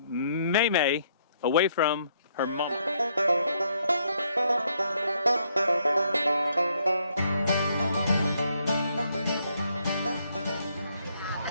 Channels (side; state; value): both; inverted; correlation -0.72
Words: away from her mom.